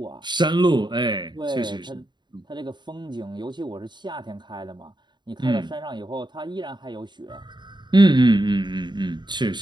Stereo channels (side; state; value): left; late; 0.22 ms